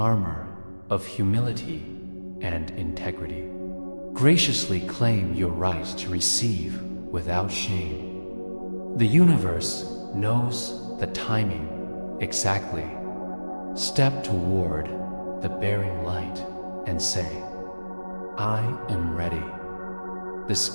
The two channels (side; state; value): both; inverted; correlation -1.00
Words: of humility and integrity. Graciously claim your right to receive without shame. The universe knows the timing exactly. Step toward the bearing light and say, I am ready. The